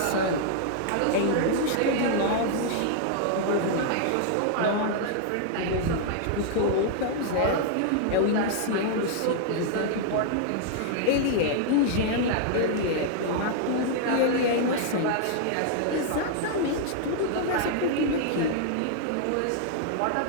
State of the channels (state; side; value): different; both; correlation -0.01